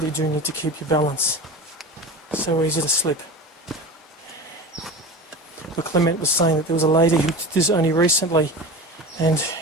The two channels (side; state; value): both; normal; correlation 0.31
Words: do need to keep your balance. So easy to slip. But Clement was saying that there was a lady who did this only recently and